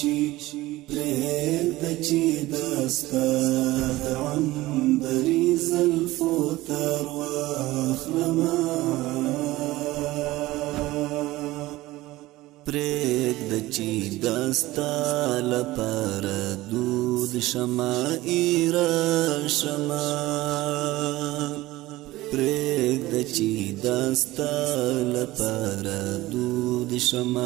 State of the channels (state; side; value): quieter; left; 18.1 dB